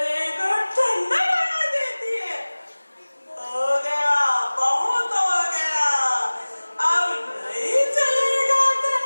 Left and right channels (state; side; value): inverted; both; correlation -1.00